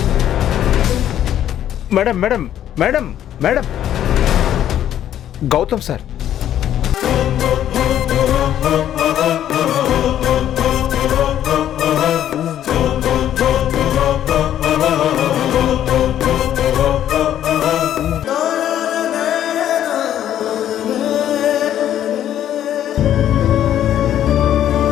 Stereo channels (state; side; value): quieter; right; 11.1 dB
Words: madam madam madam madam Gautam sir.